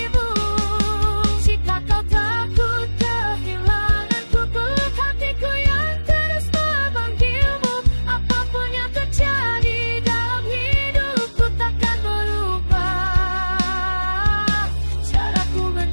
Jika kau takut kehilanganku, peluk hatiku yang terus memanggilmu. Apapun yang terjadi dalam hidupku takkan berubah caraku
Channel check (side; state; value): both; inverted; correlation -1.00